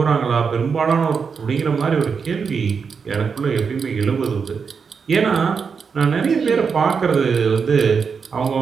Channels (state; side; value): quieter; left; 5.8 dB